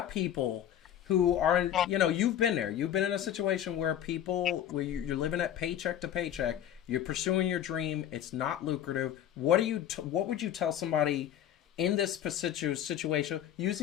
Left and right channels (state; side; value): quieter; right; 10.7 dB